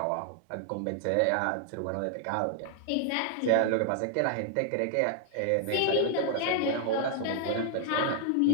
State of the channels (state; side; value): different; both; correlation -0.01